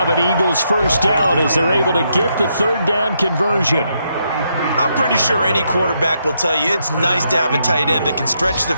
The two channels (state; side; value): inverted; both; correlation -0.78